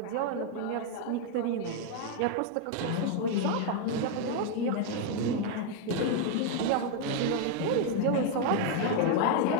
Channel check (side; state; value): both; different; correlation 0.01